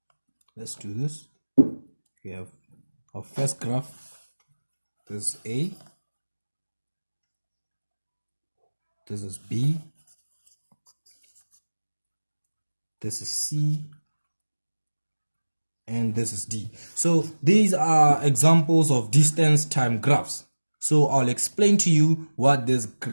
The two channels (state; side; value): inverted; both; correlation -1.00